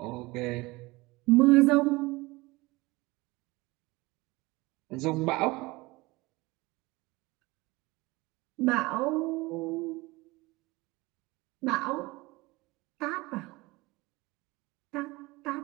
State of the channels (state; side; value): quieter; left; 22.2 dB